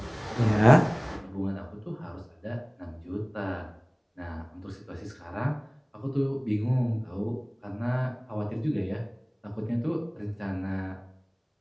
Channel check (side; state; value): both; identical; correlation 1.00